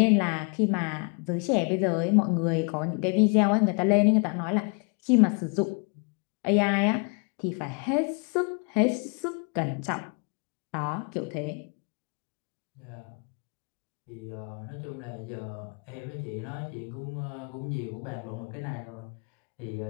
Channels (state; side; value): quieter; right; 36.7 dB